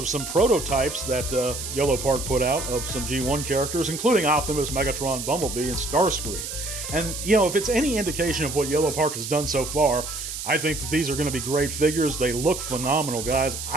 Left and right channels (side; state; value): right; noise; hiss, 7 dB below the sound